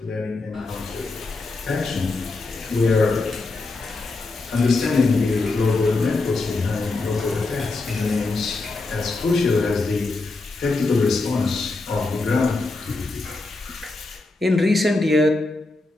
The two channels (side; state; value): right; quieter; 3.4 dB